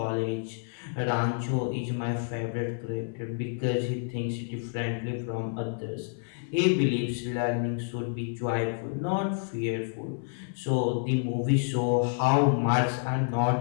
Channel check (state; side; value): silent; right; 58 dB below the other